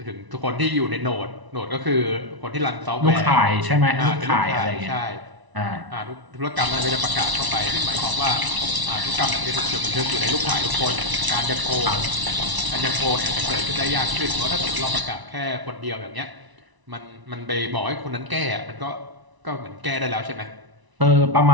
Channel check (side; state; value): left; late; 1.0 ms